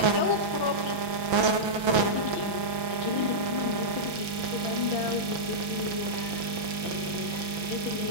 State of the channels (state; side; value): late; left; 6.0 ms